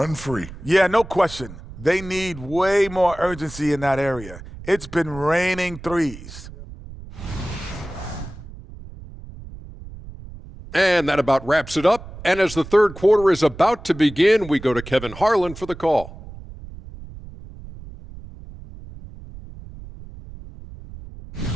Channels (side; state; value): right; noise; rumble, 15 dB below the sound